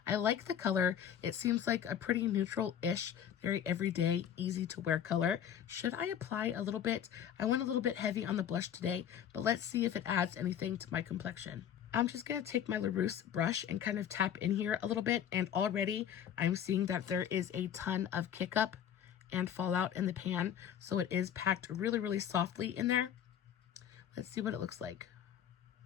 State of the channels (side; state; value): right; quieter; 9.4 dB